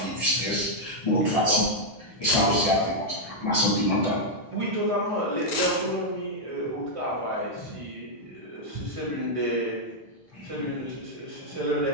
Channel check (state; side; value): normal; both; correlation -0.03